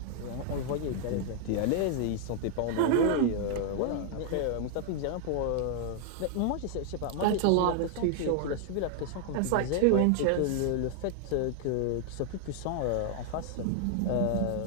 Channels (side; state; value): both; different; correlation -0.01